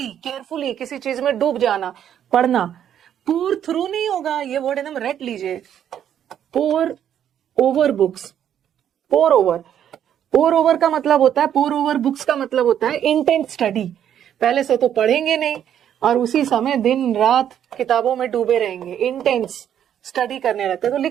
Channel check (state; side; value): quieter; left; 9.8 dB